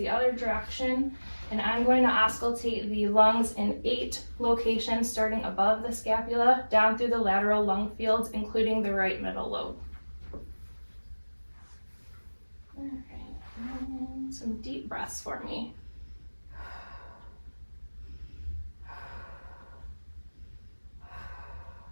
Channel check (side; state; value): both; inverted; correlation -1.00